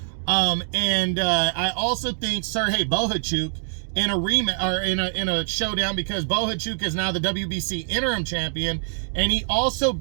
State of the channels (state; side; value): silent; left; digital silence